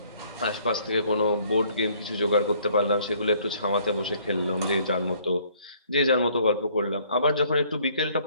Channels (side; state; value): both; inverted; correlation -0.61